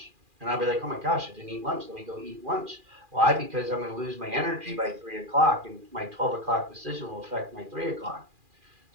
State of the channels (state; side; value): late; left; 2.4 ms